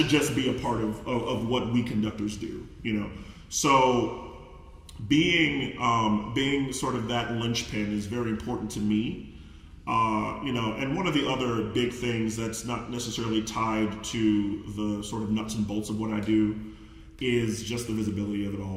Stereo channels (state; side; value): identical; both; correlation 1.00